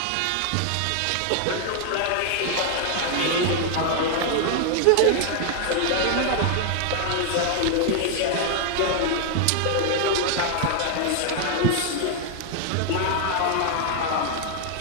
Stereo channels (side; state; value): both; different; correlation 0.00